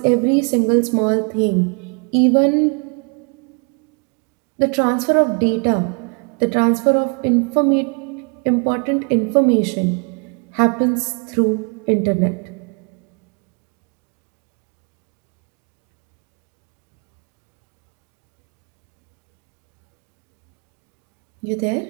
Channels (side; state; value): left; quieter; 37.7 dB